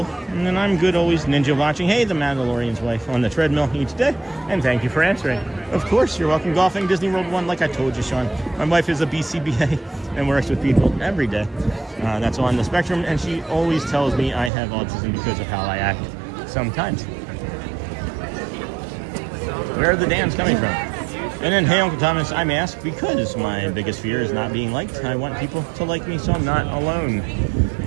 And then I'm good always. Ninja watching. Hey, the Mandalorian's wife on the treadmill each day. And thank you for answering. Of course, you're welcome. Golfing, Disney World 1, like I told you, Sean. My wife is a BCBA and works with people every day. That's on the spectrum. And she always tells me I have autism because of how I act sometimes. Where are the Dans coming from? And then, hey, Uncle Thomas, I'm asked because my biggest fear is not being liked. I want people to like me so I'm not alone.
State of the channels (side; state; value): left; drops out; at 14.5 s